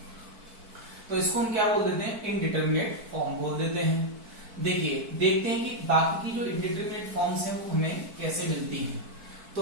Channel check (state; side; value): late; left; 4.5 ms